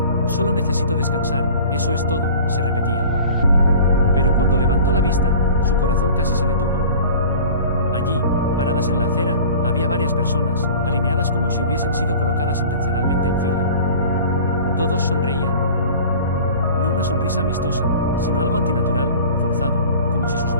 Solo necesito descansar, eso es todo, se repetía. Pero cuando levantó la vista, su corazón casi se detuvo. Allí, paradas en la acera, había varias personas, alineadas como si hubiesen sido colocadas intencionalmente en fila. Todos sonreían. No una sonrisa amistosa, sino algo antinatural, forzado, como si sus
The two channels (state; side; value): inverted; both; correlation -0.42